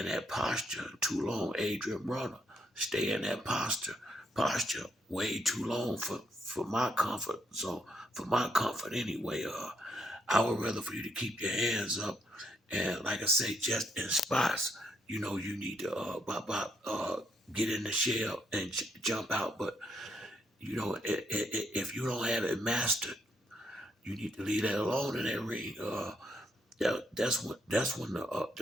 that posture too long. Adrian Bronner stay in that posture way too long for my comfort. So for my comfort anyway, I would rather for you to keep your hands up, and like I say, just in spots. You know, you need to get in the shell and jump out. But you know, if you don't have it mastered, you need to leave that alone in that ring. That's when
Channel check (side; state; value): both; normal; correlation 0.75